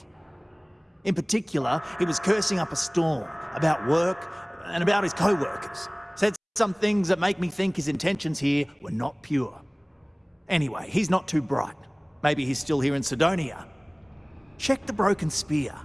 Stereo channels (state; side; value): identical; both; correlation 1.00